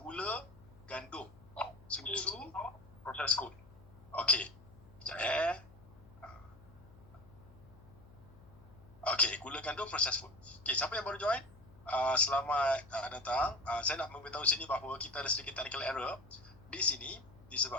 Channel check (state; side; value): noise; left; hum, 22 dB below the sound